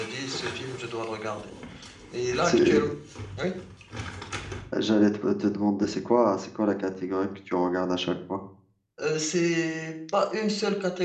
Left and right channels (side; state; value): both; identical; correlation 1.00